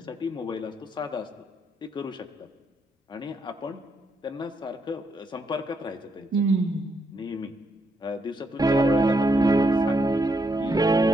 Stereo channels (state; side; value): normal; both; correlation 0.77